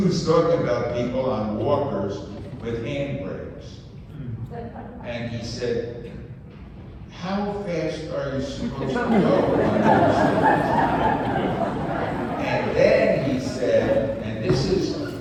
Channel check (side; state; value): both; identical; correlation 1.00